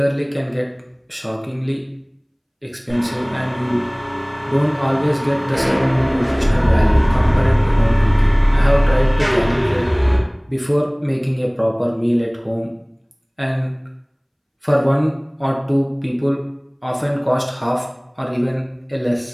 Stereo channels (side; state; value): both; identical; correlation 1.00